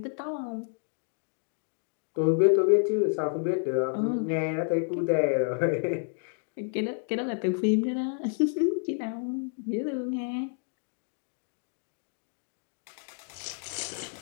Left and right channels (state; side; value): silent; right; 58 dB below the other